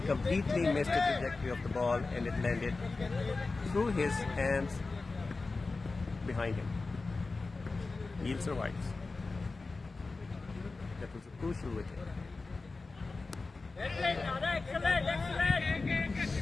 missed the trajectory of the ball, and it landed through his hands behind him. Neil survives. That was a crucial wicket.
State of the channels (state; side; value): quieter; right; 3.7 dB